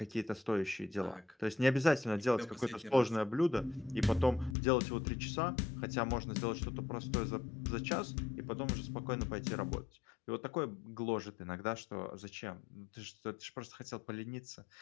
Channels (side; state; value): right; drops out; at 4.5 s